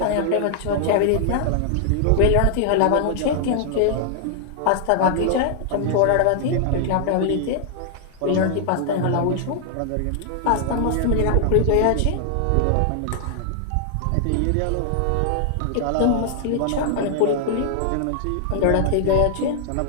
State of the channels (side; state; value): both; different; correlation 0.00